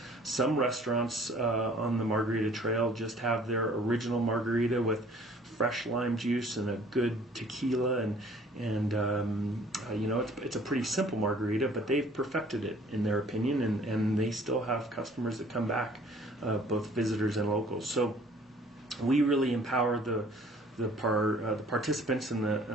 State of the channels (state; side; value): normal; both; correlation 0.55